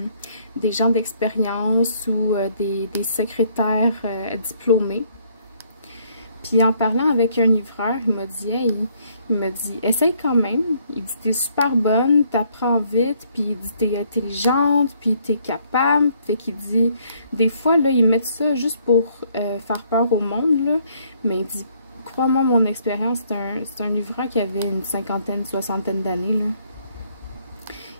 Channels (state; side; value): inverted; both; correlation -0.67